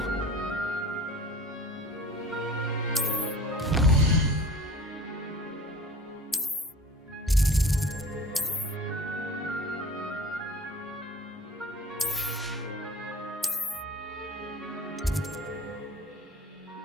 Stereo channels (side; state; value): both; normal; correlation 0.41